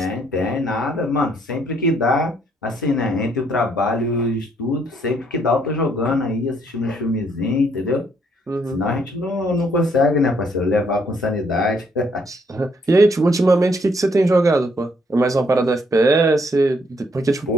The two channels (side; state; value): both; normal; correlation 0.69